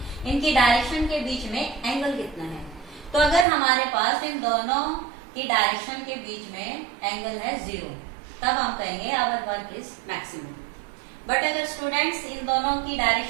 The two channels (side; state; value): left; drops out; at 3.5 s